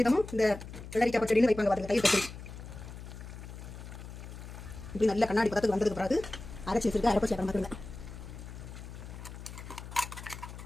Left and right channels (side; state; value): left; noise; hum, 12 dB below the sound